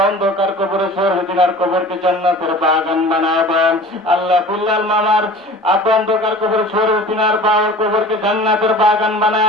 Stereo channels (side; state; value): both; normal; correlation 0.41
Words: অন্ধকার কবরে শহীদিনার কবরকে জান্নাতের বাগান বানায় দেন। আল্লাহ ফুল্লাল মামার অন্ধকার কবরে শহীদিনার বাবার কবরকে জান্নাতের বাগান